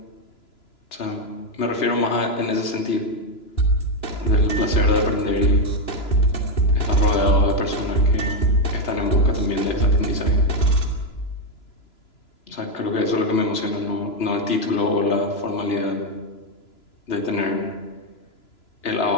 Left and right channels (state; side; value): late; right; 3.0 ms